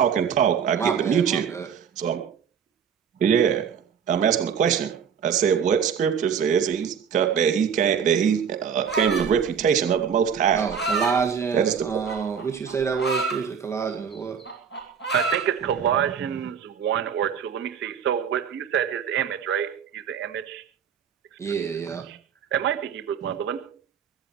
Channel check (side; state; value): left; quieter; 7.4 dB